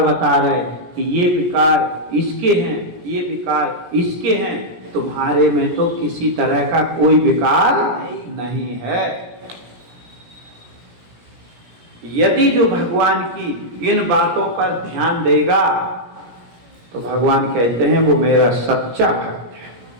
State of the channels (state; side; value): late; left; 17 ms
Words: बता रहे कि ये विकार इसके हैं, ये विकार इसके हैं, तुम्हारे में तो किसी तरह का कोई विकार नहीं है। यदि जो भगवान की इन बातों पर ध्यान देगा तो भगवान कहते हैं वो मेरा सच्चा भक्त है,